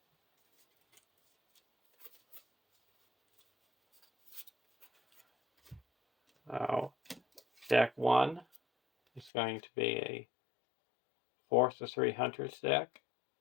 Now, deck 1 is going to be a 4/3 Hunters deck.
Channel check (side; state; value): right; drops out; at 9.3 s